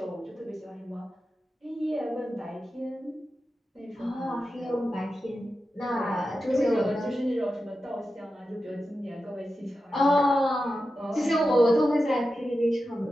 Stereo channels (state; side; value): normal; both; correlation 0.91